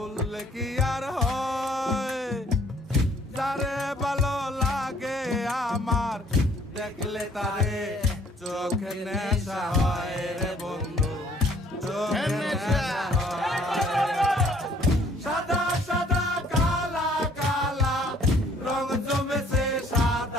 কি আর হয়, যারে ভালো লাগে আমার দেখলে তারে চোখে নেশা হয় রে বন্ধু, চোখে নেশা হয়। সাদা সাদা কালা কালা রং জমেছে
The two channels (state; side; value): normal; both; correlation 0.61